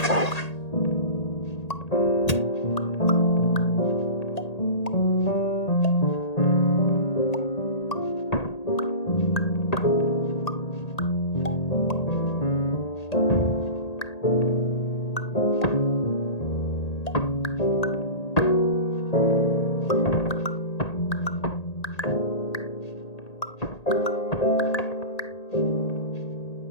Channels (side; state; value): right; late; 1.8 ms